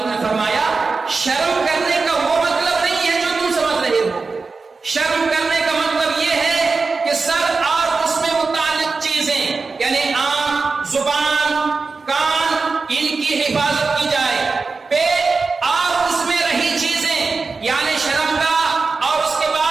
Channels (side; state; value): left; quieter; 4.2 dB